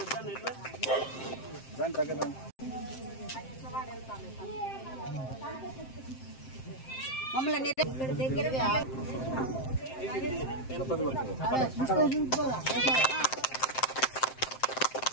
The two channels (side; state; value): right; late; 7.6 ms